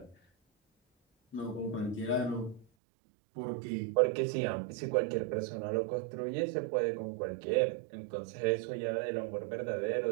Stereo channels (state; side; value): drops out; left; at 2.7 s